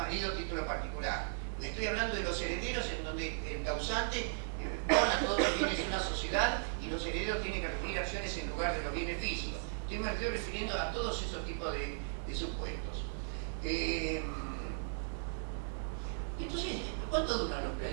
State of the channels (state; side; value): silent; left; 53 dB below the other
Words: título particular. Estoy hablando de los herederos en donde el causante dona todos los bienes de una sociedad y los herederos tienen que recibir acciones en lugar de los bienes físicos. Me estoy refiriendo a todos esos tipos de supuestos. Entonces, ¿cuánto duran los